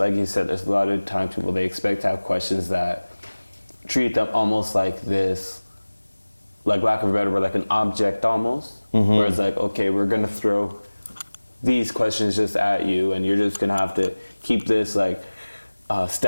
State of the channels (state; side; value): inverted; both; correlation -1.00